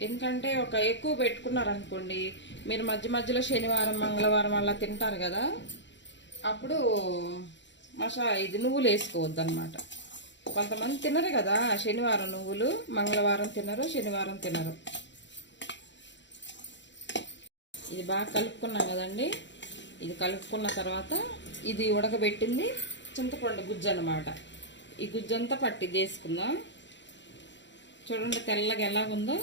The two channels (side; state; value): right; late; 0.53 ms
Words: ఎందుకంటే ఎక్కువ పెట్టుకున్నారనుకోండి, మీరు మధ్య మధ్యలో శనివారం, మంగళవారం అలా తింటారు కదా, అప్పుడు ఇది నువ్వులు వేసుకోవద్దు అనమాట. కొంతమంది తినరు కదా శనివారం నువ్వులు, మంగళవారం తినరు, శనివారం తినరు. ఇది బాగా కలుపుకున్నాం కదండి. ఇది కలుపుకున్న తర్వాత ఇది ఉడకబెట్టింది చింతపండు గుజ్జు అన్నమాట. ఈ గుజ్జంతా పట్టి వేసుకుందాం. చూడండి తెల్లగా ఎలాగుందో.